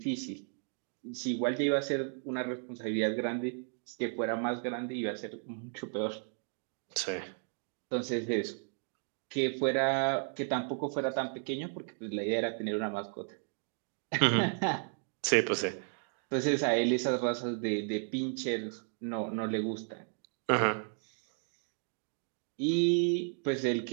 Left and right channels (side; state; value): left; silent; 55 dB below the other